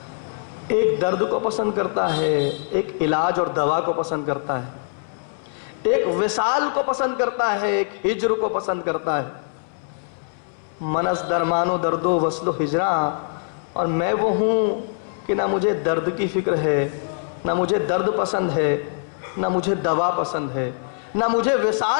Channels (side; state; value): right; silent; 63 dB below the other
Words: ایک درد کو پسند کرتا ہے, ایک علاج اور دوا کو پسند کرتا ہے, ایک وصال کو پسند کرتا ہے, ایک ہجر کو پسند کرتا ہے. منز درمان و درد و وصل و ہجراں, اور میں وہ ہوں کہ نہ مجھے درد کی فکر ہے, نہ مجھے درد پسند ہے, نہ مجھے دوا پسند ہے, نہ مجھے